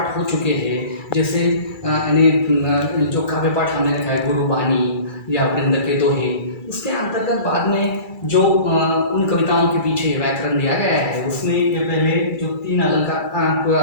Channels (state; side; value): late; right; 2.3 ms